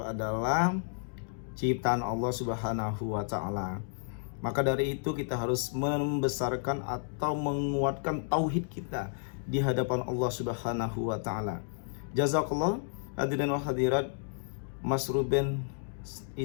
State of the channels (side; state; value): right; silent; digital silence